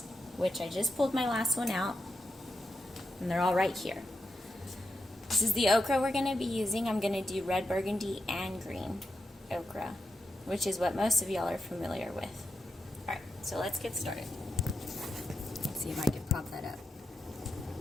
which I just pulled my last one out, and they're all right here. This is the okra we're going to be using. I'm going to do red, burgundy, and green okra, which is what most of y'all are familiar with. Alright, so let's get started. Let's see if I can pop that up.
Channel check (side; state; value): both; normal; correlation 0.86